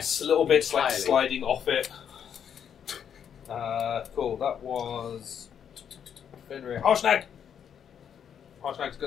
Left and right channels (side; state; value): right; quieter; 8.3 dB